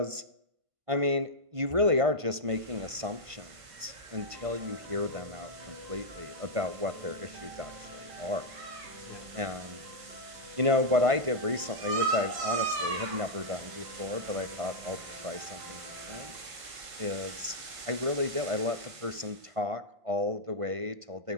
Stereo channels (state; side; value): late; left; 1.5 ms